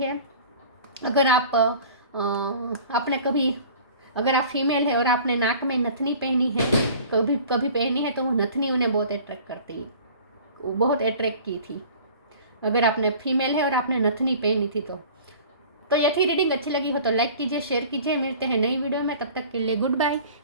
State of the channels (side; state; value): both; inverted; correlation -0.45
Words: अगर आप अगर आप फीमेल है और आपने नाक में नथनी पहनी है, कभी पहनी है, तो वो नथनी उन्हें बहुत अट्रैक्ट करती है, बहुत अट्रैक्ट की थी। अगर आपने फीमेल है और आपने नथनी पहनी थी तो ये थी रीडिंग। अच्छी लगी हो तो लाइक कीजिए, शेयर कीजिए। मिलते हैं नई वीडियो में, तब तक के लिए गुड बाय।